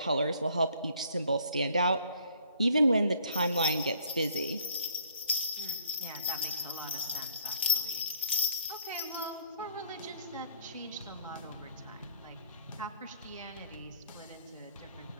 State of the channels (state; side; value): inverted; both; correlation -0.62